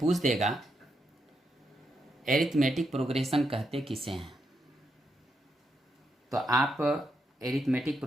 देगा एरिथमेटिक प्रोग्रेशन कहते किसे हैं, तो आप एरिथमेटिक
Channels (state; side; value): normal; both; correlation 0.82